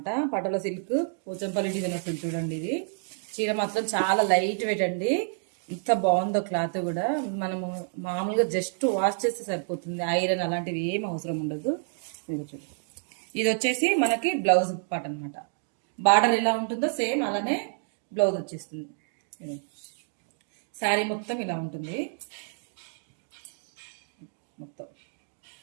పటోలా సిల్క్ పోచంపల్లి డిజైన్ వస్తుంది చూడండి. ఇది చీర మాత్రం చాలా లైట్ వెయిట్ అండి. ఇంత బాగుందో క్లాత్ కూడా. మనము మామూలుగా జస్ట్ వాష్ చేస్తే సరిపోతుంది. ఐరన్ అలాంటివి ఏం అవసరం ఉండదు. ఇది వచ్చేసి మనకి బ్లౌజ్ పార్ట్ అనమాట. బార్డర్ ఎలా ఉంటుందో సేమ్ అలానే బ్లౌజ్ వచ్చేస్తుంది. శారీ మొత్తం ఇలా ఉంటుంది. మొత్తం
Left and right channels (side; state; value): left; silent; digital silence